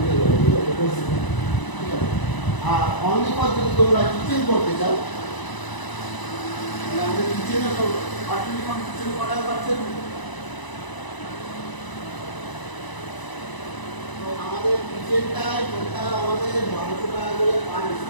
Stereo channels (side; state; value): right; late; 1.0 ms